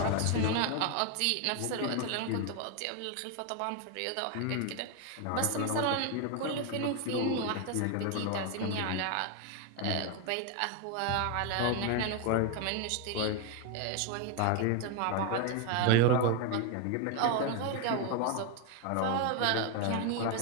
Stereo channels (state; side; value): different; both; correlation 0.01